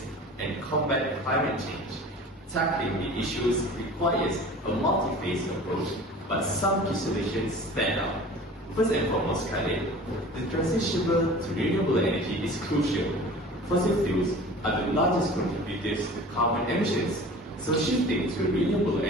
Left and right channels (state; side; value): normal; both; correlation 0.41